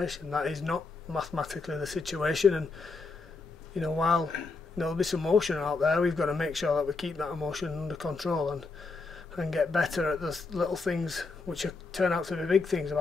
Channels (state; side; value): quieter; right; 4.0 dB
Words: That is not mathematically the situation, and while there'll be some emotion out there, we've got to make sure that we keep that emotion under control and get better at the little things which turn out to be big things,